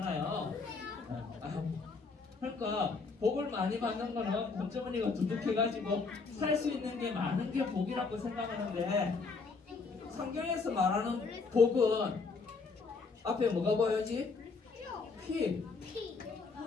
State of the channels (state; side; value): quieter; right; 4.4 dB